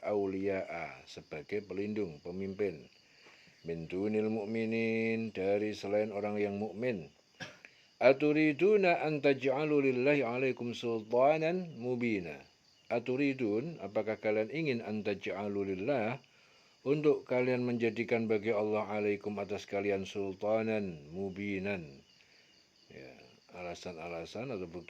auliya'a, sebagai pelindung, pemimpin, min dunil mu'minin, dari selain orang yang mukmin. Aturiduna an taj'alu lillahi 'alaikum sultanan mubina. Aturidun, apakah kalian ingin an taj'alu lillah, untuk kalian menjadikan bagi Allah alaikum atas kalian sultanan mubinan, ya, alasan-alasan atau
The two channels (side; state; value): both; identical; correlation 1.00